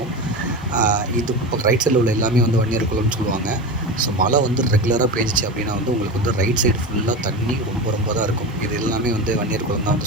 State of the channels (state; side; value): normal; both; correlation 0.25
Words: இது இப்போ ரைட் சைடில் உள்ள எல்லாமே வந்து வன்னியர் குளம்னு சொல்லுவாங்க. ஸோ மழை வந்து ரெகுலராக பேஞ்சிச்சு அப்படின்னா வந்து உங்களுக்கு வந்து ரைட் சைடு ஃபுல்லாக தண்ணி ரொம்ப ரொம்ப தான் இருக்கும். இது எல்லாமே வந்து வன்னியர் குளம் தான்